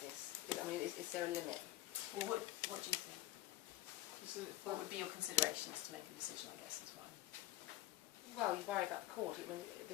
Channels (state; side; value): quieter; right; 15.6 dB